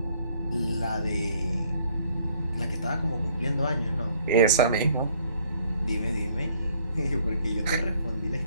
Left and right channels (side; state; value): both; inverted; correlation -0.63